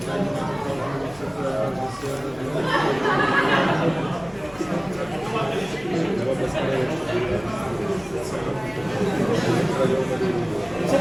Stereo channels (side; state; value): left; noise; rumble, 23 dB below the sound